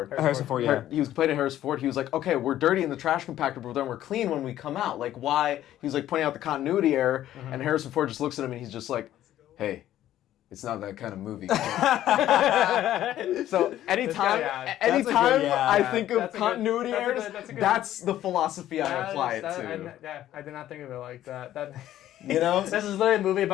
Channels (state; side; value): quieter; right; 12.7 dB